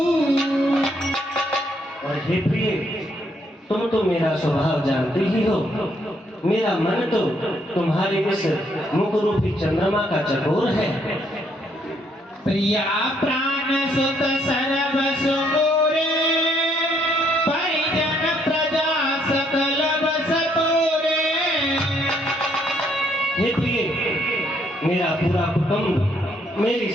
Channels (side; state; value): both; normal; correlation 0.70